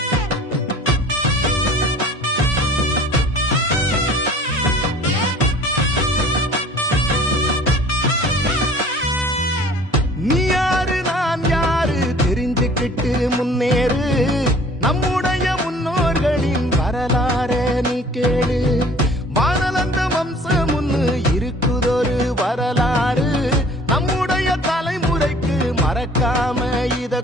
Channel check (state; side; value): normal; both; correlation 0.50